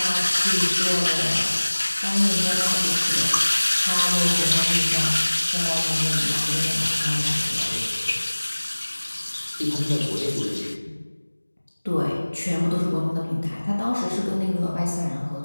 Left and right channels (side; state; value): both; inverted; correlation -1.00